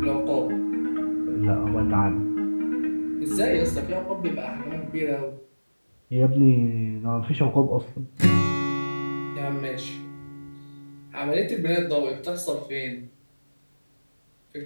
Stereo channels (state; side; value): inverted; both; correlation -1.00